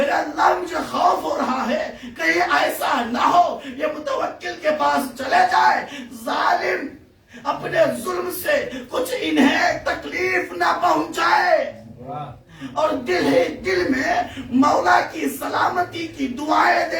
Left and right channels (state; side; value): identical; both; correlation 1.00